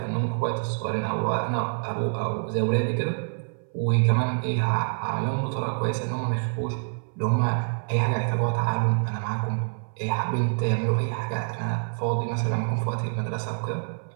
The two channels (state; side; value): silent; left; 59 dB below the other